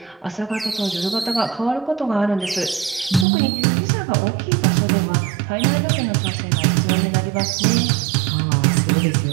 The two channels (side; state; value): left; drops out; at 3.2 s